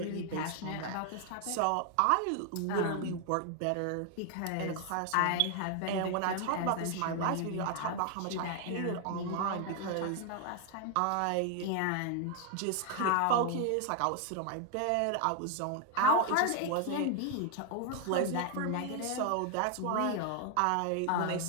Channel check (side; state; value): both; different; correlation 0.00